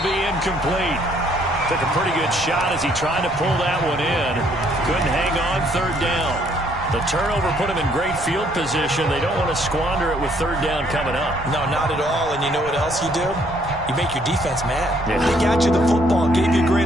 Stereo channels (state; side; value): noise; right; rumble, 17 dB below the sound